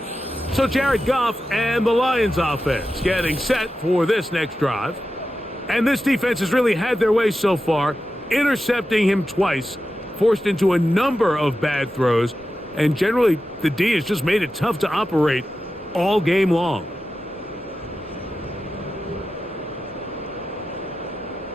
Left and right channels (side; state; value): both; normal; correlation 0.91